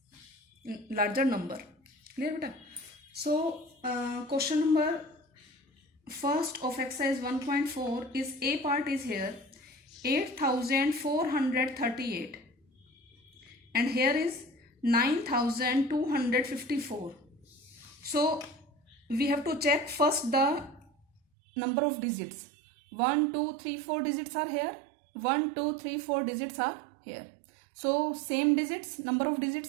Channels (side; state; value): left; drops out; at 21.2 s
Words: larger number. Clear beta? So question number first of exercise 1.4 is A part is here 8438 and here is 9254. So we have to check first the number of digits. 1 2 3 4 digits are here, 1 2 3 4 digits are here. So same digits, number of